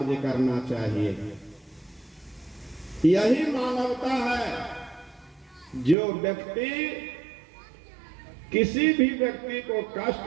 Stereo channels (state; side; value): drops out; left; at 6.0 s